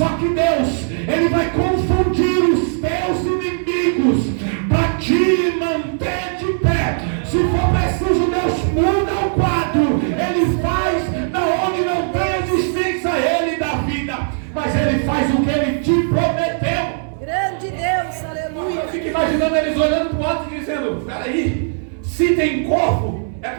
que Deus, Ele vai confundir os teus inimigos para te manter de pé. Se for preciso, Deus muda o quadro, Ele faz da onde não tem existência Ele da vida, mas Ele faz o que Ele te prometeu. Grande Deus, aleluia. Eu fico imaginando eles olhando para o alto e dizendo: peraí, se tem corpo é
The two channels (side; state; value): left; silent; 65 dB below the other